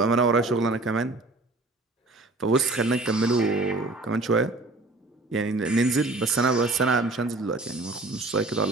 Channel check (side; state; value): left; quieter; 3.1 dB